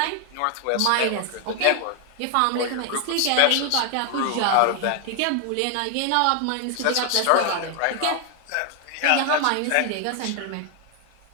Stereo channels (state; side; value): different; both; correlation 0.01